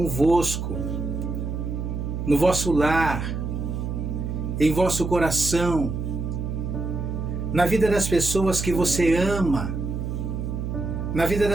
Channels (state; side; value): noise; right; hum, 4 dB below the sound